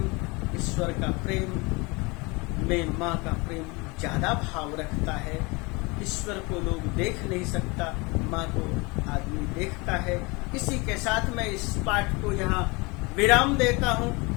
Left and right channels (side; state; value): right; quieter; 26.6 dB